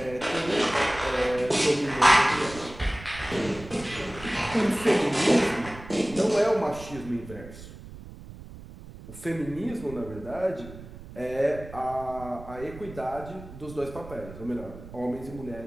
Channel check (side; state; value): right; noise; rumble, 15 dB below the sound